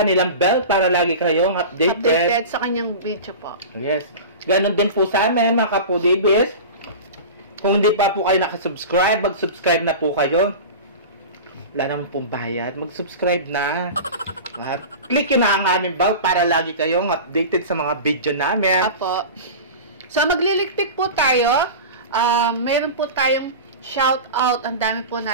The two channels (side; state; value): both; inverted; correlation -0.31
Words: bell para lagi kayong updated Sa kanyang video po. Yes. Ganon din po sa amin mga kapudibis. Kung hindi pa po kayo nakasubscribe, mag-subscribe na po kayo. Wala naman pong bayad. Mag-subscribe na. At click nyo na ang aming bell para lagi kayong updated sa mga video namin. Apo. So, magliligpit po tayo. Meron po tayong shoutout. Ang dami po